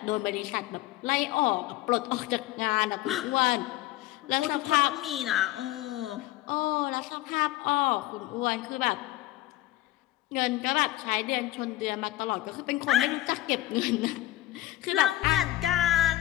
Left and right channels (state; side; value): quieter; right; 16.3 dB